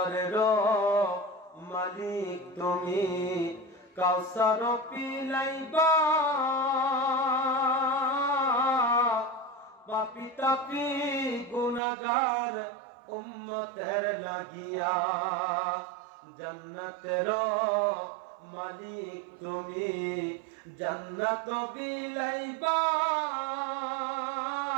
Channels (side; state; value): left; drops out; at 11.8 s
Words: মালিক তুমি, কাউসার পিলাইবা পাপি তাপি গুনাহগার উম্মতের লাগিয়া। জান্নাতের মালিক তুমি জান্নাত বিলাইবা